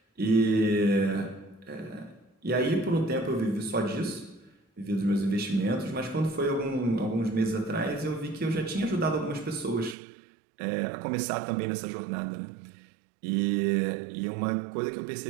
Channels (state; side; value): drops out; left; at 10.0 s